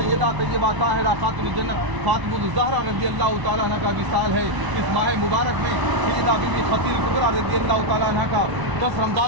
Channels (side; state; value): left; late; 1.0 ms